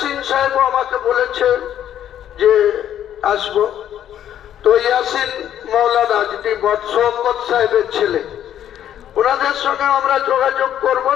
সাহেবও আমাকে বলেছে যে আসবো। তো ইয়াসিন মৌলানা যিনি শওকত সাহেবের ছেলে, ওনাদের সঙ্গে আমরা যোগাযোগ করব,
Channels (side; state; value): right; quieter; 10.6 dB